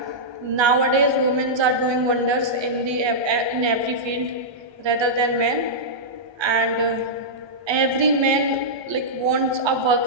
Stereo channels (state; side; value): late; left; 1.2 ms